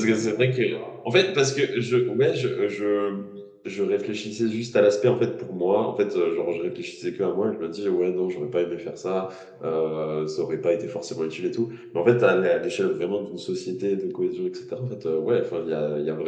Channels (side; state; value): both; identical; correlation 1.00